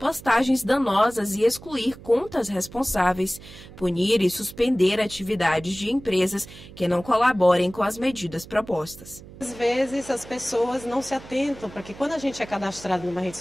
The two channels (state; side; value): noise; right; hum, 18 dB below the sound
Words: danosas e excluir contas responsáveis, punir e suspender atividades de empresas que não colaborem com as medidas propostas. Às vezes as pessoas não se atentam para que quando a gente é cadastrado numa rede